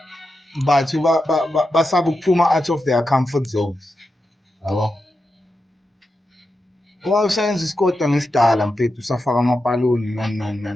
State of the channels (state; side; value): normal; both; correlation 0.88